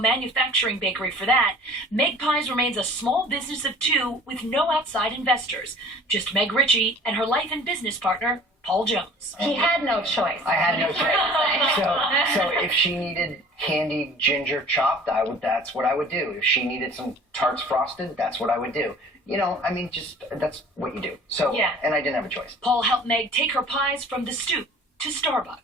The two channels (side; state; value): both; normal; correlation 0.47